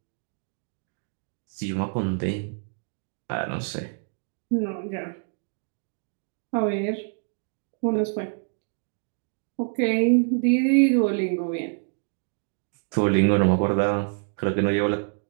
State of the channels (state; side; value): silent; left; 60 dB below the other